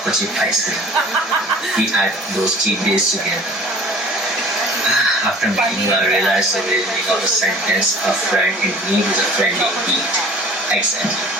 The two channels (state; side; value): normal; both; correlation 0.47